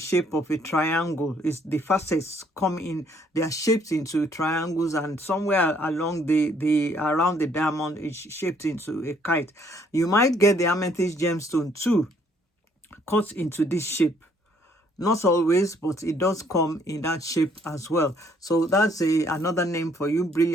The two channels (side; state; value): both; normal; correlation 0.65